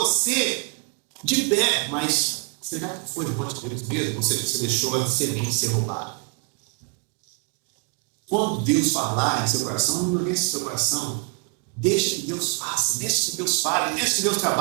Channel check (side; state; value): left; quieter; 34.2 dB